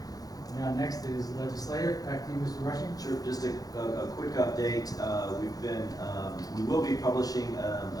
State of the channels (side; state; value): right; late; 0.18 ms